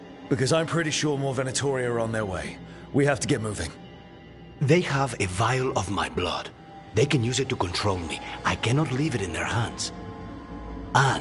Because I'm pretty sure more Venatori are on their way. We have to get moving. They have a vial of my blood. They can use it to control me. I cannot leave it in their hands.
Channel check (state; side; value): identical; both; correlation 1.00